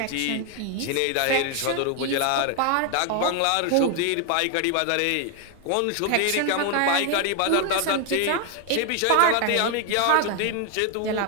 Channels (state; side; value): different; both; correlation 0.01